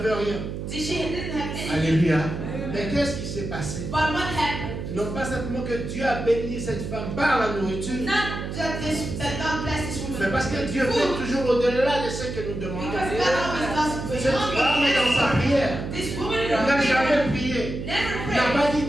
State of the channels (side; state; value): right; noise; hum, 6 dB below the sound